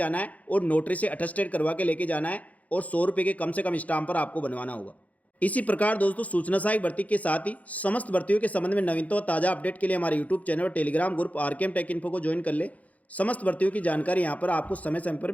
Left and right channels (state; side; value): late; right; 0.071 ms